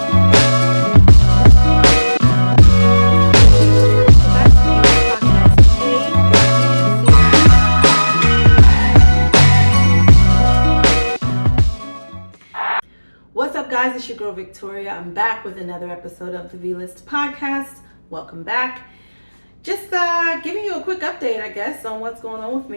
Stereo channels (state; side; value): inverted; both; correlation -1.00